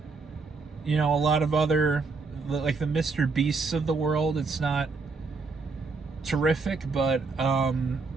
you know, a lot of other, like the Mr. Beasts of the world, it's not terrific. But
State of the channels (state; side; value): quieter; left; 4.2 dB